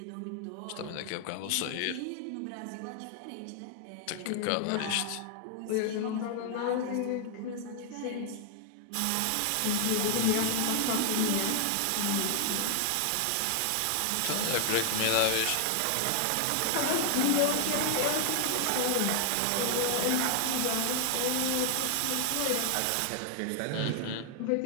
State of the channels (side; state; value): both; different; correlation 0.00